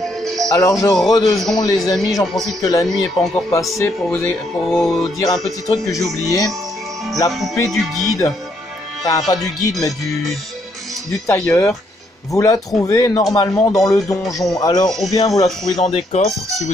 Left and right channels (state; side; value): normal; both; correlation 0.73